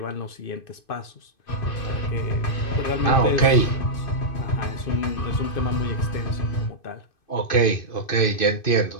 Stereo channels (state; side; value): late; right; 2.5 ms